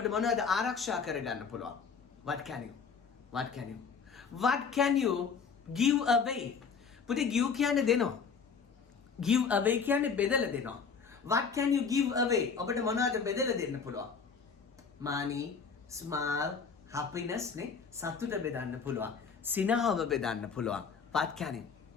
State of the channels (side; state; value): right; quieter; 5.8 dB